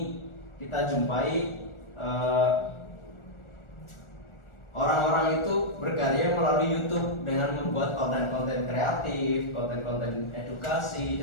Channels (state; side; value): late; right; 1.4 ms